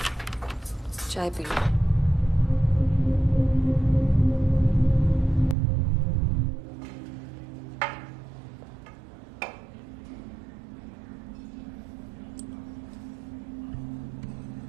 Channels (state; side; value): drops out; left; at 5.6 s